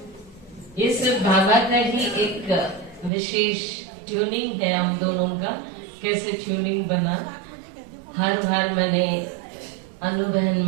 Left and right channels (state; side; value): drops out; left; at 3.1 s